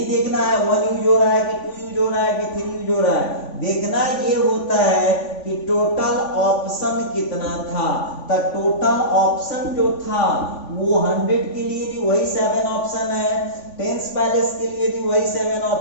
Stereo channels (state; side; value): late; right; 3.5 ms